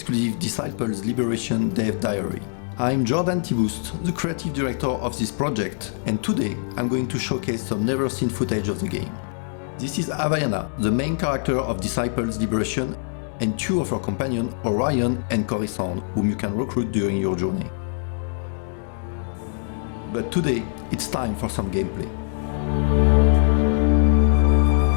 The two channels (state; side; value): silent; right; digital silence